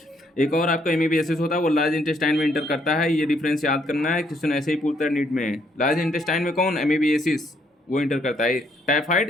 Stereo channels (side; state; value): both; normal; correlation 0.70